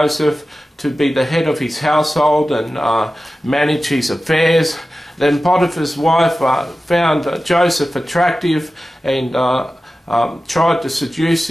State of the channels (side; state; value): both; normal; correlation 0.95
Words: to be the head of his household and manage his affairs. Then Potiphar's wife found Joseph attractive and tried to seduce